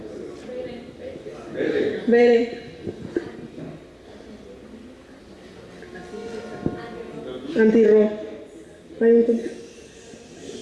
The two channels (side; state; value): both; identical; correlation 1.00